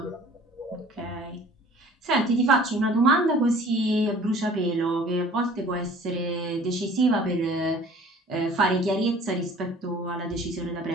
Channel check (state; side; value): normal; both; correlation 0.49